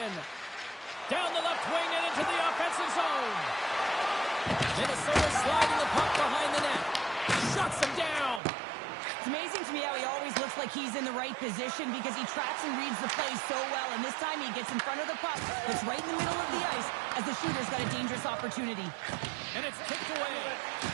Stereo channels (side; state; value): left; drops out; at 8.4 s